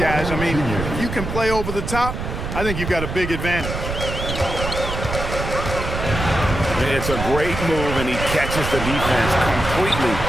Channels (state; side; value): noise; right; rumble, 5 dB below the sound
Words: I mean, if you can play over the top, I think you've got a big advantage. It's a great move, and he catches the defense completely